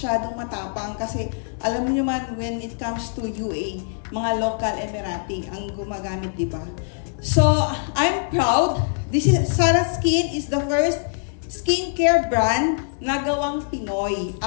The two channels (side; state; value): right; silent; 63 dB below the other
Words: matapang kasi alam niyo man when it comes to UAE, mga local Emirati ang gumagamit, di ba? So, I'm proud. Sarah Skin is the first skincare brand na gawang Pinoy.